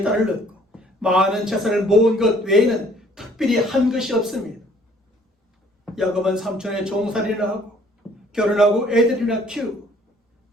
딸을 낳고 많은 재산을 모은 것 외에는 특별히 한 것이 없습니다. 야곱은 삼촌의 종살이를 하고 결혼하고 애들이나 키우고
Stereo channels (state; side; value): normal; both; correlation 0.58